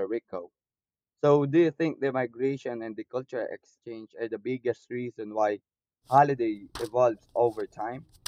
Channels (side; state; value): both; identical; correlation 1.00